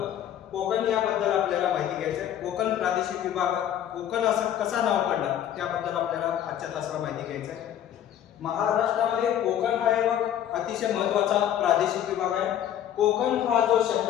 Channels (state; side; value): quieter; right; 10.6 dB